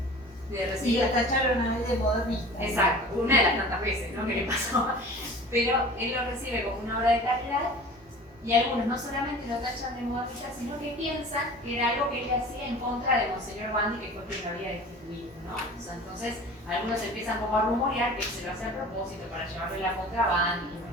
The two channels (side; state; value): both; normal; correlation 0.41